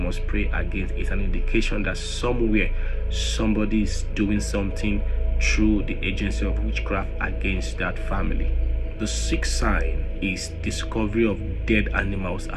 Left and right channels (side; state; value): both; identical; correlation 1.00